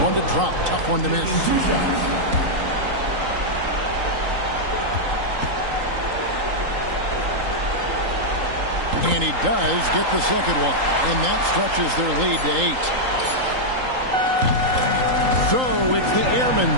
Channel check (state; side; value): late; left; 3.8 ms